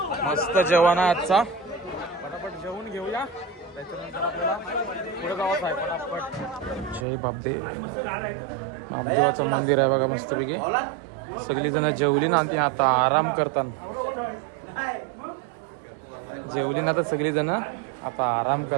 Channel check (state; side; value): drops out; left; at 7.1 s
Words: मस्त जेवण आहे आजचा. पटापट जेवून घेऊया, त्याच्यानंतर आपल्याला पुढे जावंच आहे पटापट. जय बापदे. बापदेवाचं मंदिर आहे बघा मस्तपैकी. सगळी जण जेवली ना ती आता आराम करतात. जेवली ना तर सगळी जण आता आराम